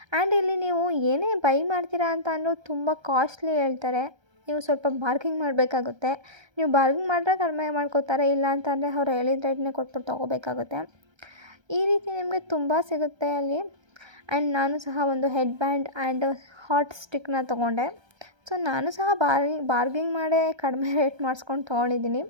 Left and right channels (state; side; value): late; left; 1.3 ms